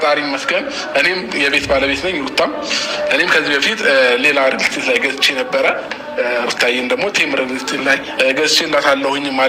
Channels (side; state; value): both; identical; correlation 1.00